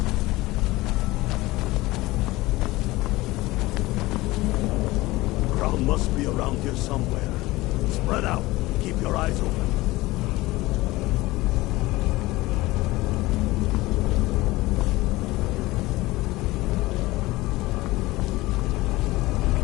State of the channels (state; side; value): quieter; right; 19.5 dB